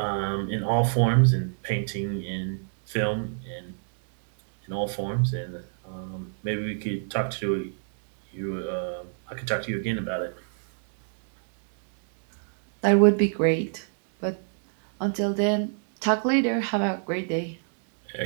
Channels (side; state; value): left; silent; digital silence